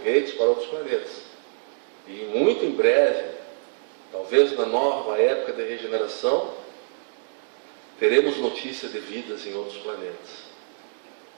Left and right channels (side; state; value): left; silent; digital silence